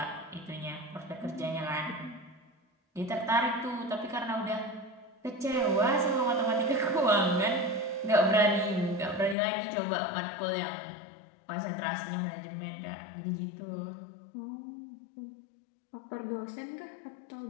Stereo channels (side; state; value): right; drops out; at 9.3 s